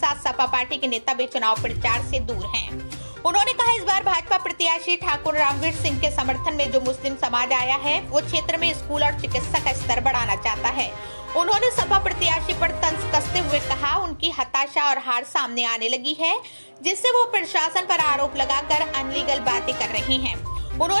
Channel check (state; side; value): inverted; both; correlation -1.00